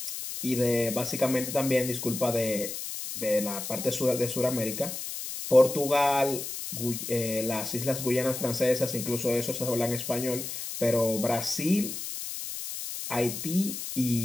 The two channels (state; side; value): noise; left; hiss, 7 dB below the sound